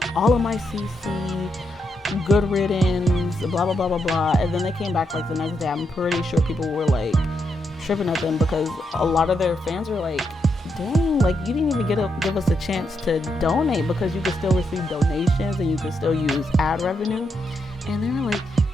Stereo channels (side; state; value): both; normal; correlation 0.81